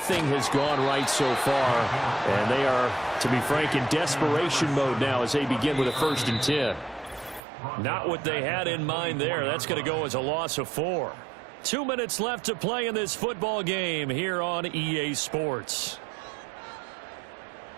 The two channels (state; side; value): drops out; left; at 7.4 s